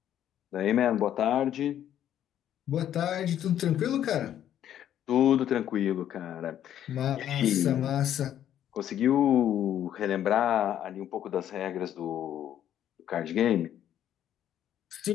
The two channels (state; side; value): quieter; right; 10.8 dB